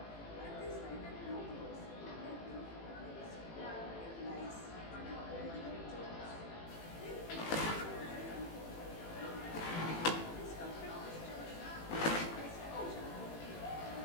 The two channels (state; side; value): late; right; 18 ms